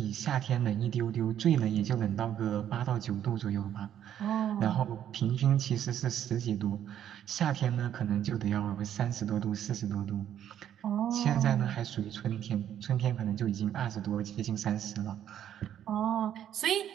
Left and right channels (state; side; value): quieter; left; 10.3 dB